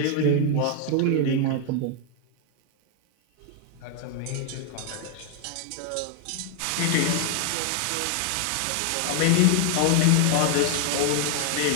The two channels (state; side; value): different; both; correlation 0.00